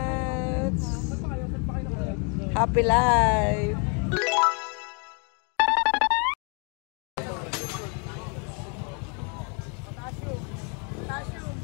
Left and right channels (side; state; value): right; quieter; 36.3 dB